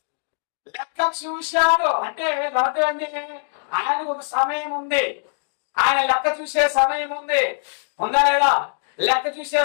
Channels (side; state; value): right; silent; digital silence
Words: చూశాడు అంటే అర్థం ఏంటి? ఆయనకు ఒక సమయం ఉంది. ఆయన లెక్క చూసే సమయం ఉంది. ఉందా లేదా? లెక్క చూసే